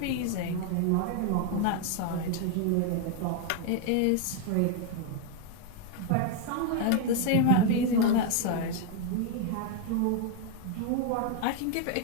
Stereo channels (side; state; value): both; different; correlation 0.00